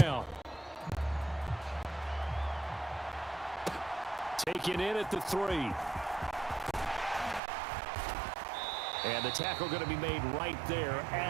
Taken in at the 3. And the tackle going to be made right there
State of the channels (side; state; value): left; drops out; at 7.4 s